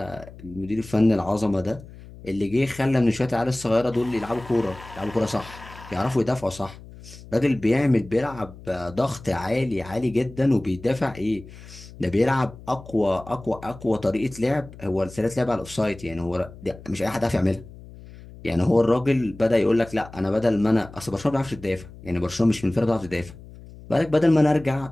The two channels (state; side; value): noise; left; hum, 18 dB below the sound